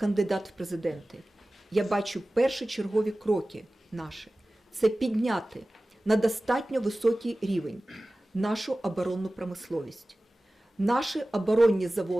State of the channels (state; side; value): normal; both; correlation 0.97